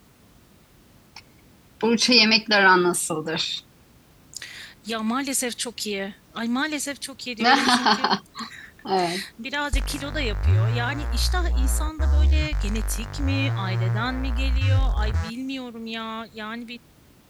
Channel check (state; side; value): identical; both; correlation 1.00